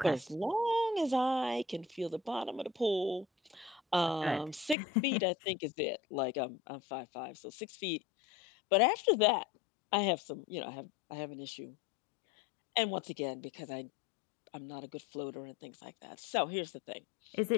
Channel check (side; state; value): right; drops out; at 4.8 s